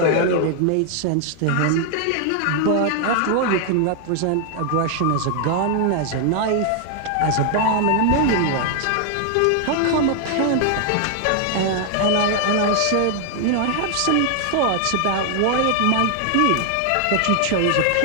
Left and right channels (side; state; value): both; different; correlation 0.00